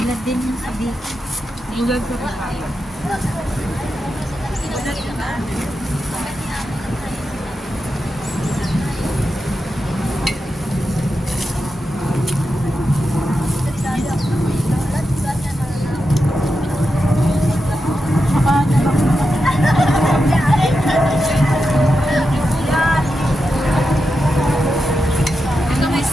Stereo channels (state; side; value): normal; both; correlation 0.88